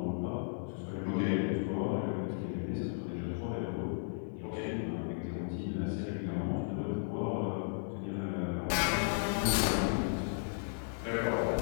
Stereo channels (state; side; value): silent; right; digital silence